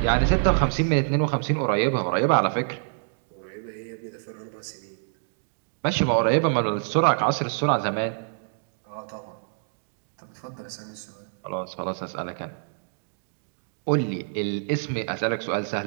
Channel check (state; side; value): silent; left; digital silence